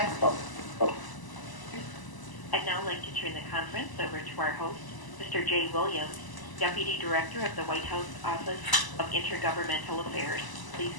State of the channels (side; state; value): right; late; 1.0 ms